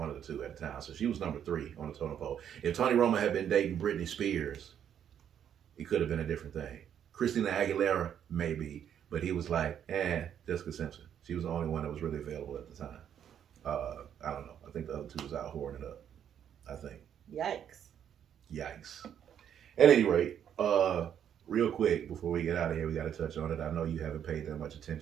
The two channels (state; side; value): quieter; left; 9.2 dB